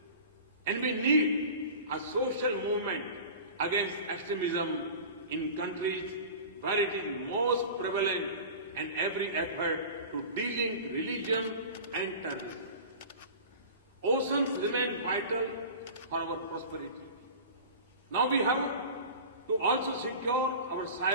And we need a social movement against extremism in countries where it is most prevalent and every effort to delink religion and terrorism. Oceans remain vital for our prosperity. Now we have to also secure our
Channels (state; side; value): inverted; both; correlation -0.36